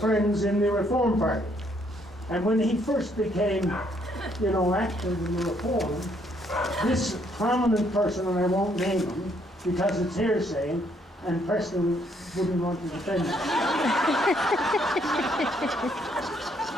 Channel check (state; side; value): normal; both; correlation 0.69